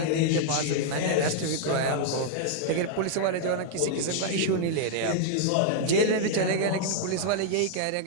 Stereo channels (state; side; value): different; both; correlation -0.01